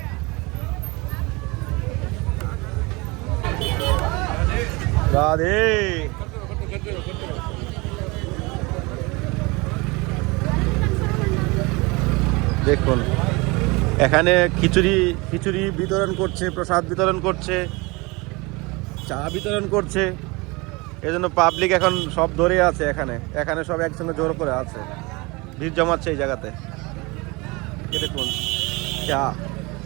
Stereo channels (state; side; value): quieter; left; 25.5 dB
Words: রাধে দেখুন, এখানে খিচুড়ি বিতরণ করছে, প্রসাদ বিতরণ করছে, চা বিতরণ করছে। এজন্য পাবলিক এখন সব ধরে আছে এখানে সব একসঙ্গে জোর করে আছে, ভিড় জমাচ্ছে এই জায়গাতে। দেখুন